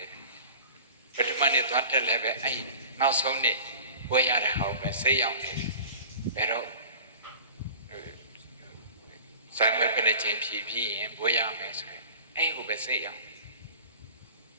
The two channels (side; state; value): both; inverted; correlation -0.41